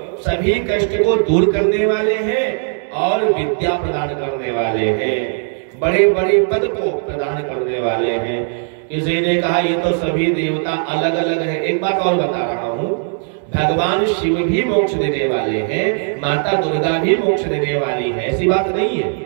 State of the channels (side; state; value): left; silent; 66 dB below the other